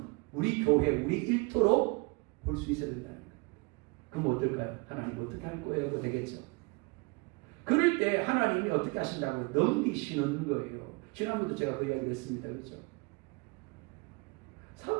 우리 교회, 우리 일터로 볼 수 있어야 된다는 거예요. 그럼 어떨까요? 하나님 어떻게 할 거예요? 되겠죠. 그럴 때 하나님이 어떻게 하신다고 넘기시는 거예요. 지난번도 제가 그 이야기를 했습니다. 그렇죠?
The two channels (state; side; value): quieter; left; 26.9 dB